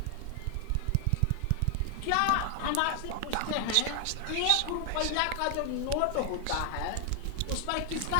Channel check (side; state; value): both; different; correlation 0.00